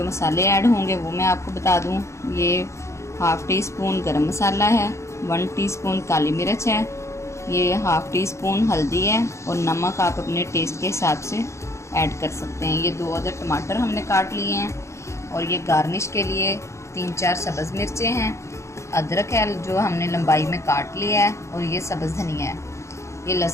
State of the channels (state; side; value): late; right; 0.14 ms